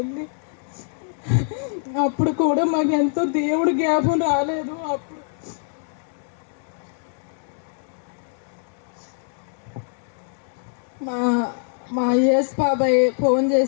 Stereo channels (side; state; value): right; silent; 63 dB below the other